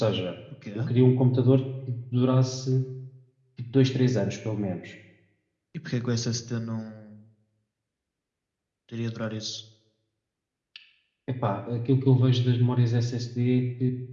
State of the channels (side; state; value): both; identical; correlation 1.00